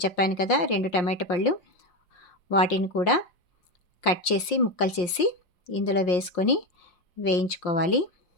చెప్పాను కదా, 2 టమాటా పళ్ళు, వాటిని కూడా కట్ చేసి ముక్కలు చేసి ఇందులో వేసుకొని వేయించుకోవాలి.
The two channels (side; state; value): right; late; 5.6 ms